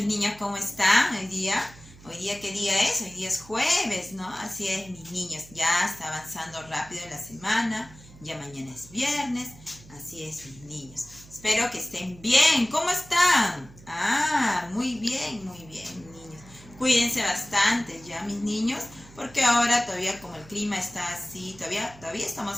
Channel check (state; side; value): noise; right; hum, 21 dB below the sound